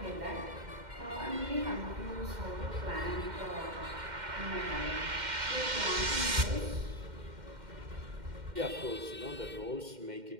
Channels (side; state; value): left; late; 2.1 ms